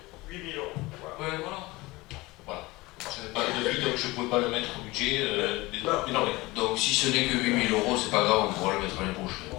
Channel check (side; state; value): right; quieter; 21.5 dB